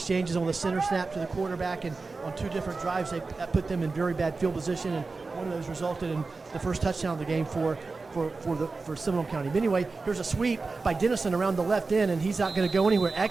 on the center snap to the quarterback, and on 2 different drives that put them in very bad field position, and one of those resulted in the first touchdown of the game for Seminole County. But anyway, here's a sweep by Dennison around the left end, and he's not going to go anywhere.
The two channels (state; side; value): quieter; left; 4.0 dB